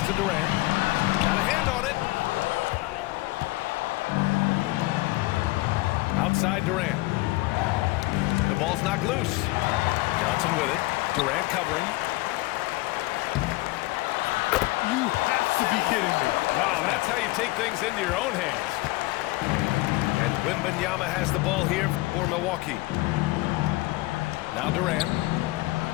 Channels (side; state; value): right; quieter; 20.9 dB